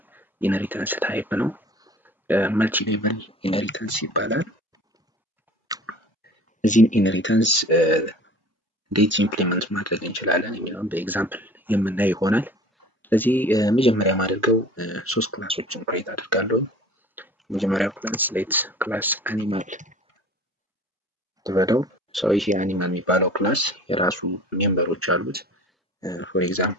ታይፕ ነው። መልቲ ሌቨል ኢንሄሪታንስ ይባላል። እዚህን ኢንሄሪታንስ እንዴት ኢምፕሊመንት ማድረግ እንችላለን የሚለውን በኤግዛምፕል የምናይ ይሆናል። ስለዚህ መጀመሪያ ማድረገው ሶስት ክላሶችን ክሬት አድርጋለሁ። መጀመሪያው ክላስ ሌት ክላስ አኒማል ተበለው ይሄ አኒማል የሚባለው ክላስ የራሱ ሜምበሮች አሉት። ፎር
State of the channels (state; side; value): normal; both; correlation 0.45